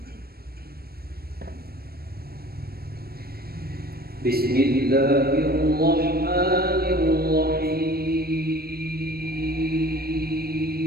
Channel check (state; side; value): late; left; 0.45 ms